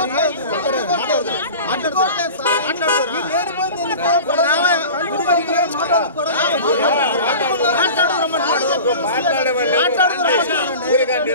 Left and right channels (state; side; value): inverted; both; correlation -0.37